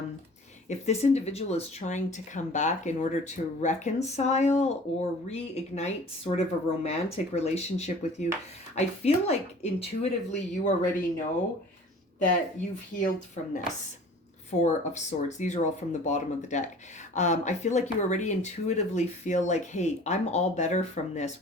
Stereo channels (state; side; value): normal; both; correlation 0.46